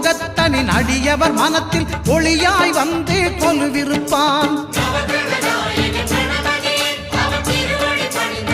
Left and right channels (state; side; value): identical; both; correlation 1.00